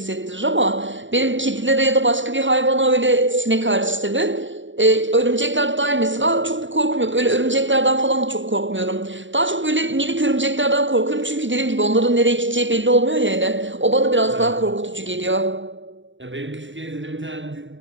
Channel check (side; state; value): left; late; 0.55 ms